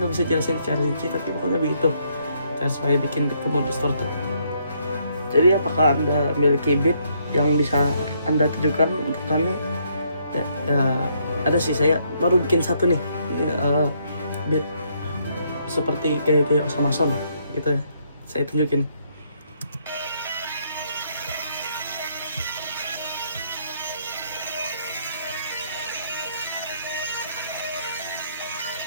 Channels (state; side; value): inverted; both; correlation -0.71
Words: bisa jelasin secara rinci, tapi pokoknya begitu cara supaya bikin beat kamu distorted. Jadi apakah Anda memiliki beat yang bisa Anda tujukan untuk kami? Ya, ada sih, saya baru bikin satu nih, beat seperti gaya-gaya Osama Son. gitu ya. Saya tunjukin.